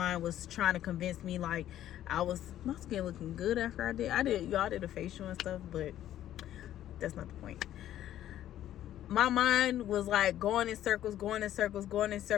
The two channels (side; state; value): right; quieter; 12.2 dB